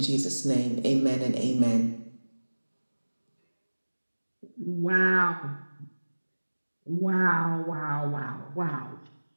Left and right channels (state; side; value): inverted; both; correlation -1.00